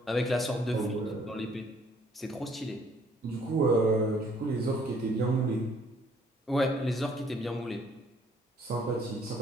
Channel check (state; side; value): normal; both; correlation 0.62